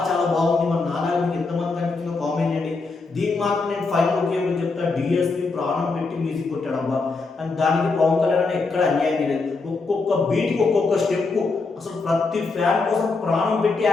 చాలా బాగుంది. మరి నాలాగా మీకు ఎంతమంది కనిపించిందో కామెంట్ చేయండి. దీనికి మాత్రం నేను ఫైనల్ ఒకే చెప్తా, డిఎస్పీ ప్రాణం పెట్టి మ్యూజిక్ కొట్టాడబ్బా. అండ్ దానికి పవన్ కళ్యాణ్ ఎక్కడ అన్యాయం చేయలేదు. ఒక్కొక్క బీట్కి ఒక్కొక్క స్టెప్ అసలు ప్రతి ఫ్యాన్ కోసం ప్రాణం పెట్టి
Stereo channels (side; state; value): right; quieter; 4.0 dB